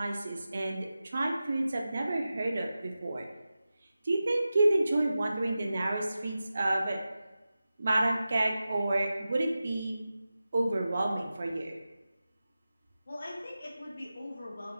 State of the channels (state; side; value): inverted; both; correlation -0.94